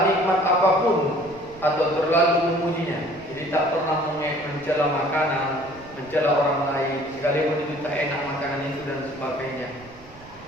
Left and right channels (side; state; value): right; noise; rumble, 22 dB below the sound